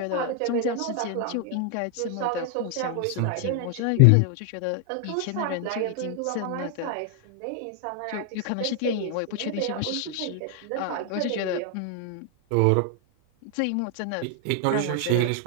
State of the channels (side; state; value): both; different; correlation 0.00